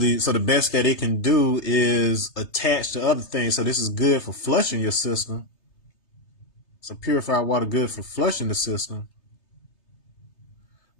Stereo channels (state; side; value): late; right; 3.3 ms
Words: so the best that it can do is attach to other things. So this is good for flushing your system. So purified water good for flushing the system,